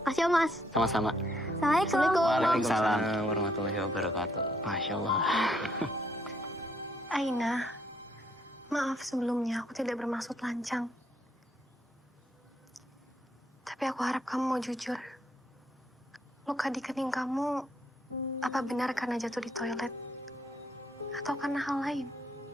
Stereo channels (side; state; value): both; normal; correlation 0.71